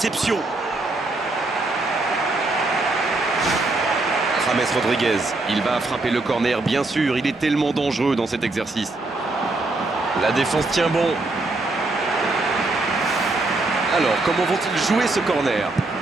James Rodriguez, il va frapper le corner, bien sûr, il est tellement dangereux dans cet exercice. La défense tient bon. Alors, comment vont-ils jouer ce corner?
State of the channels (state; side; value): quieter; left; 3.1 dB